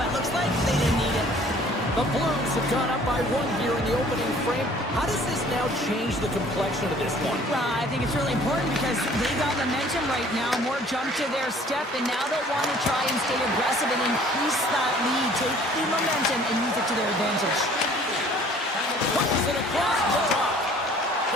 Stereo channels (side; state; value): both; normal; correlation 0.54